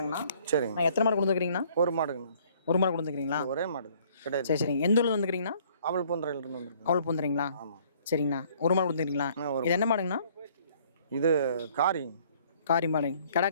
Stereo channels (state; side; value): inverted; both; correlation -0.60